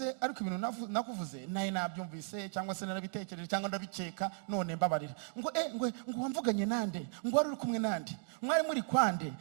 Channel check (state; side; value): silent; left; 54 dB below the other